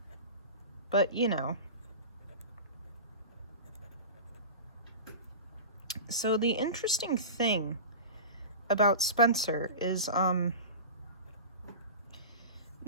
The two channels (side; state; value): both; inverted; correlation -0.31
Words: But, you know. So the interesting thing about Spencer is,